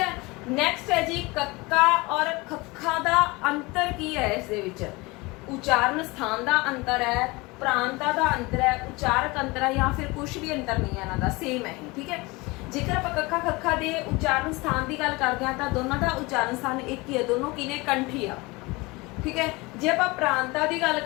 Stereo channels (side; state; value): right; quieter; 24.0 dB